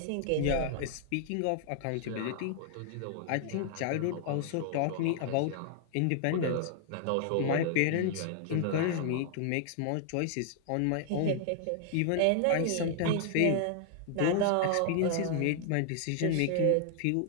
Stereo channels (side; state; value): both; different; correlation 0.00